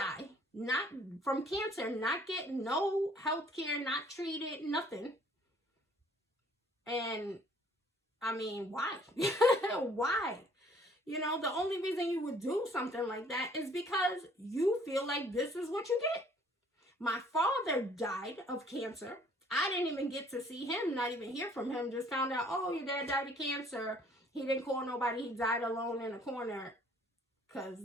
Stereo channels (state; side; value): normal; both; correlation 0.58